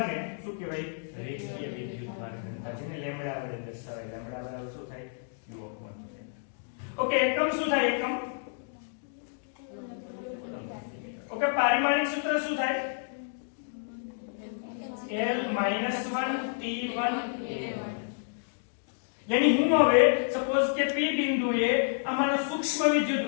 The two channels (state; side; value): silent; right; digital silence